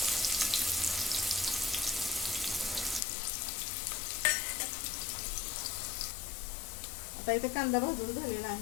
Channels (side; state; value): right; drops out; at 3.0 s